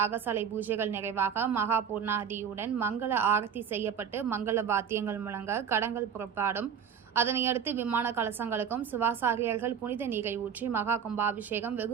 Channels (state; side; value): quieter; left; 7.6 dB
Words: பூஜைகள் நிறைவாக மகா பூர்ணாதியுடன் மங்கள ஆரத்தி செய்யப்பட்டு மங்கள வாத்தியங்கள் முழங்க கடங்கள் புறப்பாடும். அதனையடுத்து விமான கலசங்களுக்கும் சிவாசாரியர்கள் புனித நீரை ஊற்றி மகா கும்பாபிஷேகம்